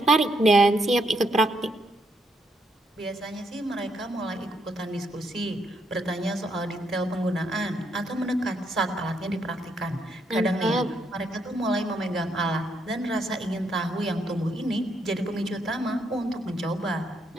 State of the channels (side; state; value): both; normal; correlation 0.76